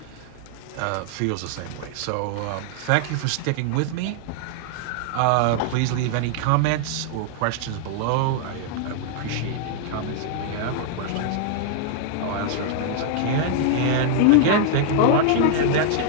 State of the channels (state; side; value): different; both; correlation 0.00